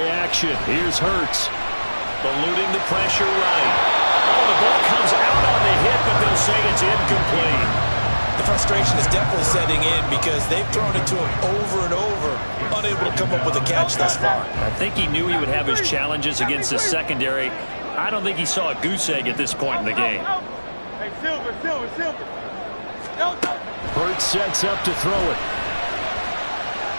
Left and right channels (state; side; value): inverted; both; correlation -1.00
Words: action. Here's Hurts. Eluding the pressure right. Oh, the ball comes out on the hit, but they'll say it's incomplete. The frustration is definitely setting in because they've thrown it to him over and over, unable to come up with a catch thus far. I think he knew he would have his challenges against the secondary. I don't think he saw a goose egg at this point in the game. Hurts sets up to throw it.